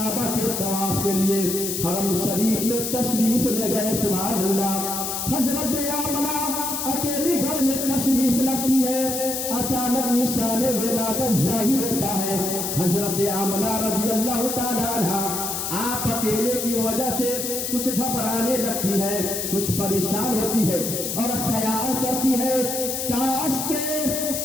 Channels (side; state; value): left; noise; hiss, 3 dB below the sound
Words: के तवाफ के लिए हरम शरीफ में तशरीफ ले गए। सुभान अल्लाह। हजरत आमना अकेली घर में तशरीफ लगती है, अचानक निशाने विलादत जाहिर होता है। हजरत आमना रज़ी अल्लाह ताला अन्हा आप अकेले की वजह से कुछ घबराने लगती है, कुछ परेशान होती है और ख्याल करती है काश